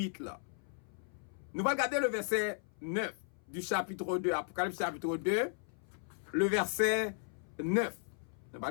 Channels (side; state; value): right; silent; 54 dB below the other